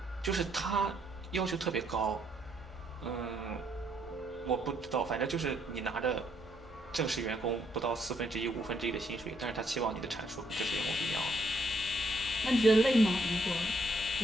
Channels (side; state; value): both; normal; correlation 0.71